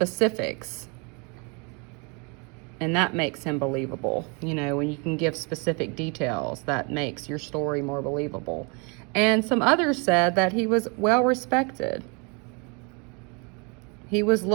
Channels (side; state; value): left; quieter; 32.7 dB